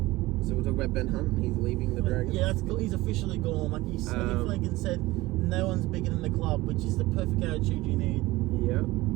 So we'll talk about Ben Hunt. He's leaving the Dragons. Yeah, he's officially gone. Like Flanagan said, no one's bigger than the club, which is the perfect attitude you need. Yeah,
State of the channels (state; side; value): quieter; left; 19.2 dB